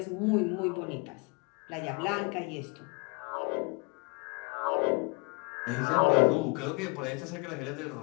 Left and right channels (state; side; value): quieter; right; 31.2 dB